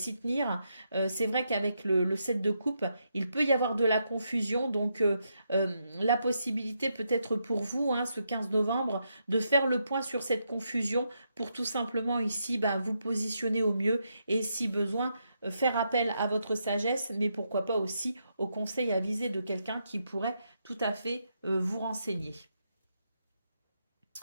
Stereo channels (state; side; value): inverted; both; correlation -0.81